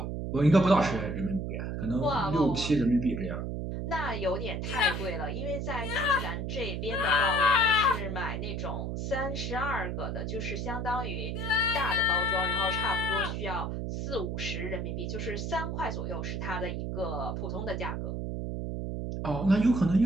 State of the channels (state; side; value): noise; right; hum, 3 dB below the sound